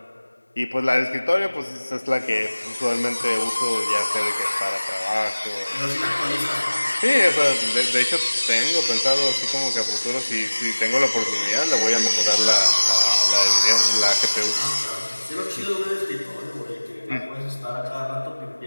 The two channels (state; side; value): inverted; both; correlation -1.00